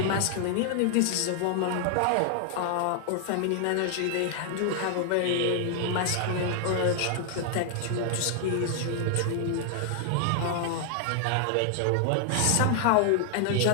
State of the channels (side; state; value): both; different; correlation 0.00